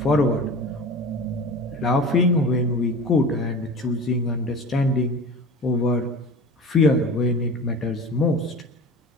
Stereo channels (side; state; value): both; normal; correlation 0.36